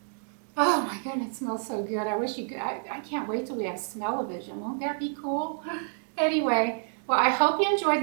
Oh my goodness, it smells so good. I wish you could. I can't wait till we have smell-o-vision. Won't that be cool? Anyway, well, I hope you enjoyed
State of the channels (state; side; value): silent; left; digital silence